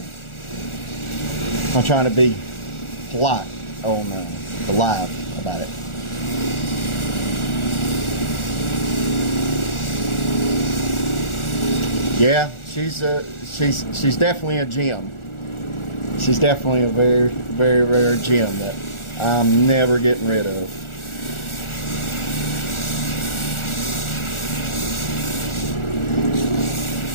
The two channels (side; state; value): right; late; 1.4 ms